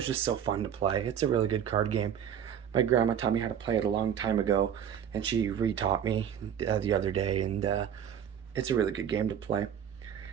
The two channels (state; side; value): quieter; left; 9.0 dB